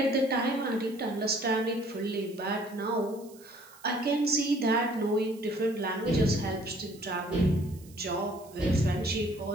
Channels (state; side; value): noise; right; hiss, 24 dB below the sound